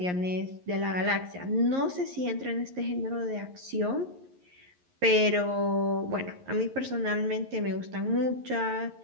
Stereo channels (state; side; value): late; left; 11 ms